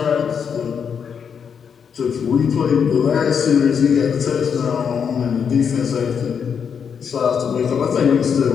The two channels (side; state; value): right; quieter; 7.0 dB